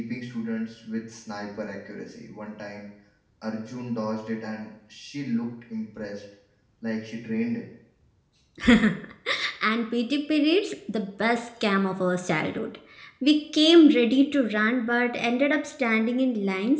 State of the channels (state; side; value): identical; both; correlation 1.00